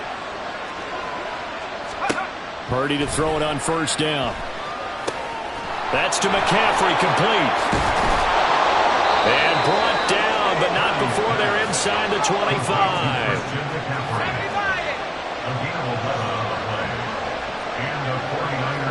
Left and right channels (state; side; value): identical; both; correlation 1.00